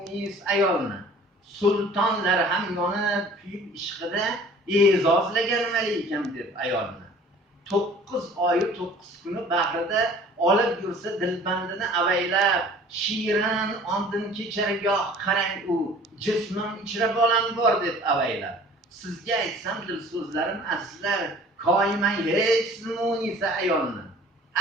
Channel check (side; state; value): both; normal; correlation 0.49